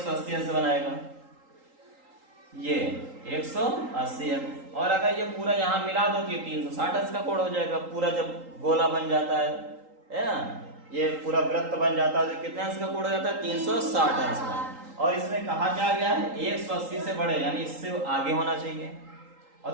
अंश बनाएगा, ये 180 अंश। और अगर ये पूरा यहाँ मिला दो तो ये 360 अंश का कोण हो जाएगा। पूरा जब गोला बन जाता है ना, ये पूरा वृत्त बन जाता है तो कितने अंश का कोण हो जाता है? 360 अंश का। और इसमें कहा क्या गया है? 180 से बड़े यानी इससे आगे होना चाहिए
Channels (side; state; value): left; late; 3.8 ms